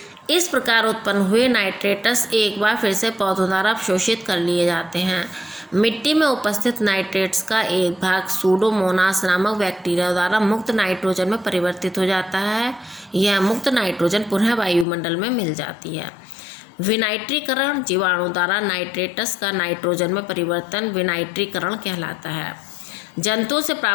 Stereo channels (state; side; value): drops out; right; at 14.9 s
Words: इस प्रकार उत्पन्न हुए नाइट्रेटस एक बार फिर से पौधों द्वारा अवशोषित कर लिए जाते हैं। मिट्टी में उपस्थित नाइट्रेट्स का एक भाग सूडोमोनास नामक बैक्टीरिया द्वारा मुक्त नाइट्रोजन में परिवर्तित हो जाता है। यह मुक्त नाइट्रोजन पुनः वायुमंडल में मिल जाती है। विनाइट्रीकरण जीवाणु द्वारा नाइट्रेटस का नाइट्रोजन में परिवर्तन विनाइट्रीकरण कहलाता है। जंतुओं से